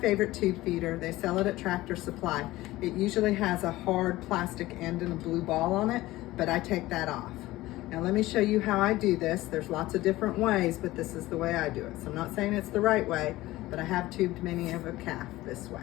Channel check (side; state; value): right; quieter; 17.6 dB